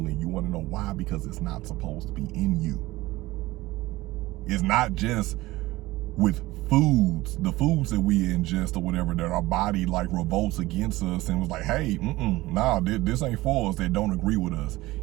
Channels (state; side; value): quieter; left; 18.9 dB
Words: in you. You want to know why? Because it's not supposed to be in you. It's not just with foods, the foods that we ingest or whatever, that our body like revolts against us and was like, hey, this ain't for us, that don't agree with us.